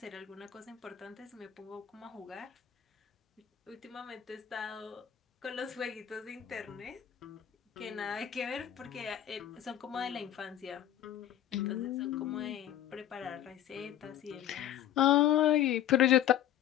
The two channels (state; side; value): quieter; right; 11.3 dB